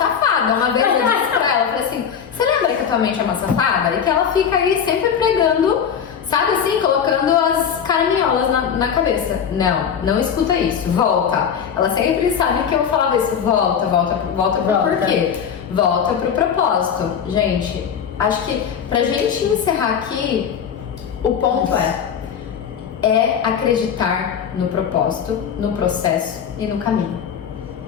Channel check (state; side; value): quieter; right; 7.7 dB